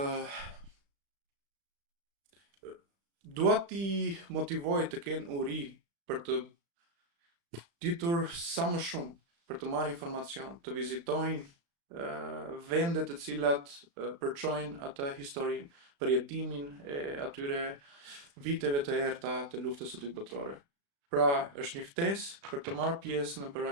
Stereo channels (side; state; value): left; late; 35 ms